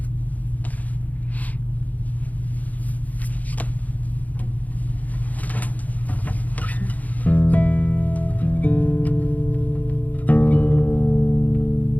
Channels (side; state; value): right; late; 0.077 ms